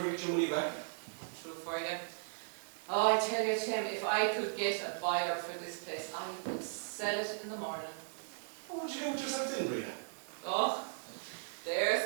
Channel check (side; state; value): left; silent; digital silence